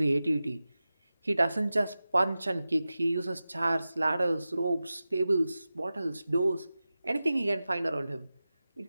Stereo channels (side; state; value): both; inverted; correlation -0.95